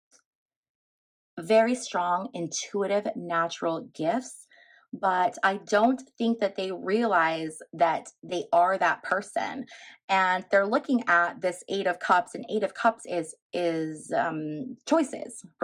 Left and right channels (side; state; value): both; identical; correlation 1.00